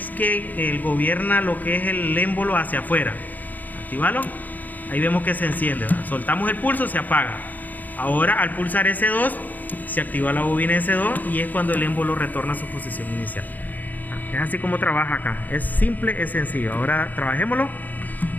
que él gobierna lo que es el émbolo hacia afuera. Actívalo. Ahí vemos que se enciende, ¿verdad? Soltamos el pulso, se apaga. Ahora al pulsar S2 se activa la bobina S2 y es cuando el émbolo retorna a su posición inicial. Es así como trabaja acá. Es simple, es sencillo. Ahora trabajémoslo.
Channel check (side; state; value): right; late; 0.083 ms